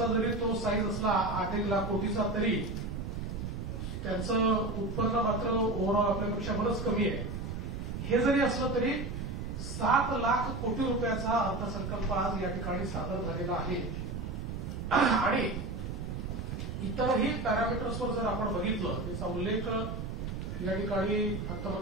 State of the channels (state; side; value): noise; right; rumble, 5 dB below the sound